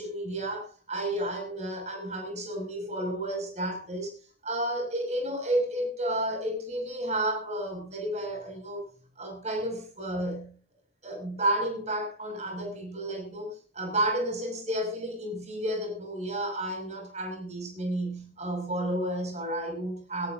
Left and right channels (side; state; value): both; normal; correlation 0.13